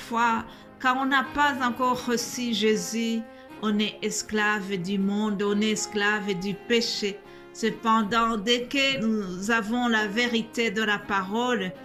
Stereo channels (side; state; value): both; identical; correlation 1.00